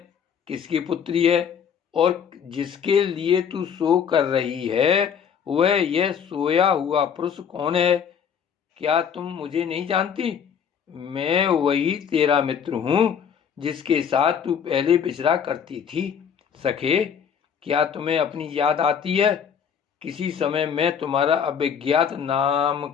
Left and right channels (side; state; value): right; quieter; 7.5 dB